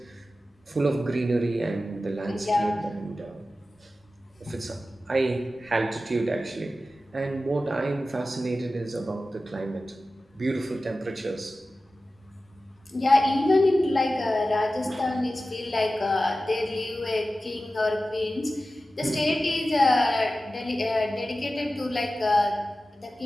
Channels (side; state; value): both; normal; correlation 0.94